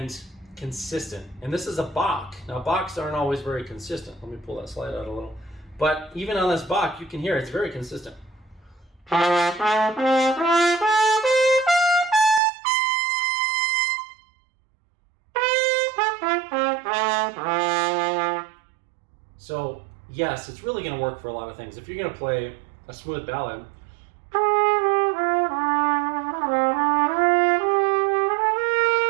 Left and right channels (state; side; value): drops out; left; at 12.4 s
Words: consistent. And this is a Bach. Now, Bachs aren't always very consistent. Let me pull that slide out a little. But even on this Bach, you can hear it's very consistent. So, yes, it's really going to work for a lot of things. If you're going to play a smooth ballad,